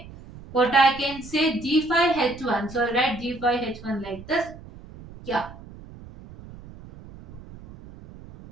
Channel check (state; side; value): noise; right; rumble, 17 dB below the sound